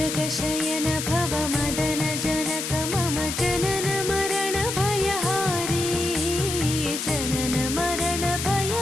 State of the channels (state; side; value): noise; left; hiss, 4 dB below the sound